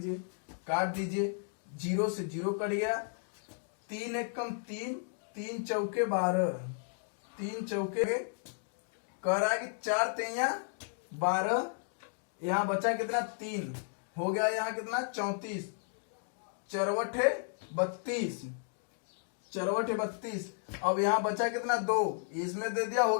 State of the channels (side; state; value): right; silent; digital silence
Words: काट दीजिए, 0 से 0 कट गया, 3 एक कम 3, 3 चौके 12, 3 चौके कह रहा है कि 4 तेया 12, यहाँ बचा कितना 3, हो गया यहाँ कितना 34, चरवटे 32, चरवटे 32, अब यहाँ बचा कितना 2, इसमें दे दिया, हो